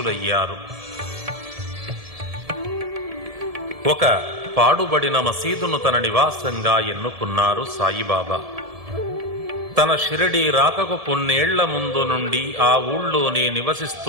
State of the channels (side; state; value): left; late; 1.7 ms